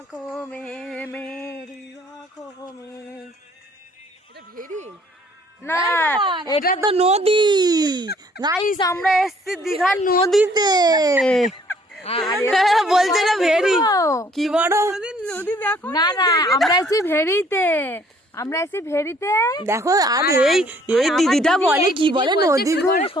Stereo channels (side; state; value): both; normal; correlation 0.60